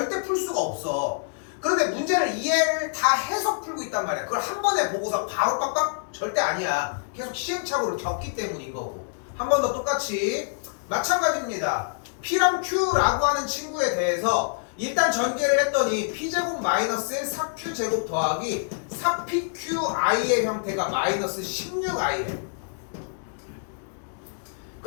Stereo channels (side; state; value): right; silent; digital silence